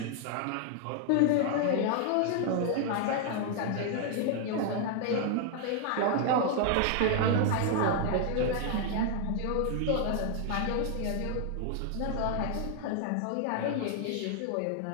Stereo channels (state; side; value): different; both; correlation 0.00